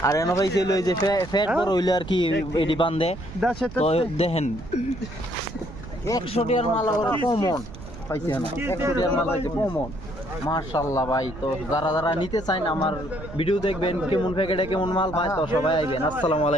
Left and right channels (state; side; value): noise; right; rumble, 13 dB below the sound